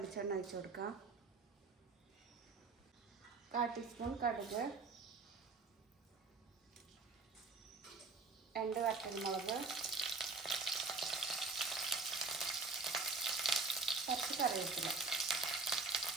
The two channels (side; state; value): left; quieter; 3.9 dB